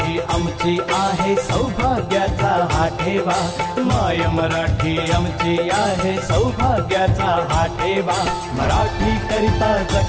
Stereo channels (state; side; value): identical; both; correlation 1.00